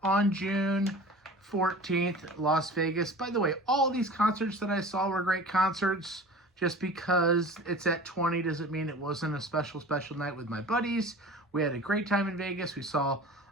on June 14th, Las Vegas. By the way, all these concerts that I saw were great concerts. Just because it's at 20 doesn't mean it wasn't a special night with my buddies. We had a great time in Vegas. We saw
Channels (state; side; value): normal; both; correlation 0.39